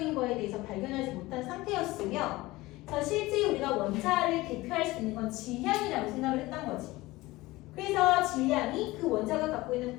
거에 대해서 발견하지 못한 상태였으며 실제 우리가 원자를 대표할 수 있는 건 질량이라고 생각을 했던 거지. 그래서 질량이 그 원자가 갖고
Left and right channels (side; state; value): right; quieter; 19.6 dB